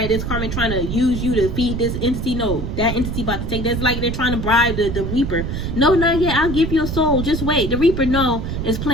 this karma trying to use you to feed this entity. No, that entity about to take. That's like they're trying to bribe the Reaper. No, not yet. I'll give you a soul. Just wait. The Reaper, no, is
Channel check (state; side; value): noise; right; rumble, 4 dB below the sound